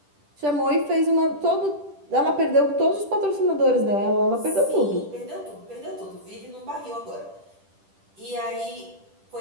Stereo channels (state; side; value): late; left; 10 ms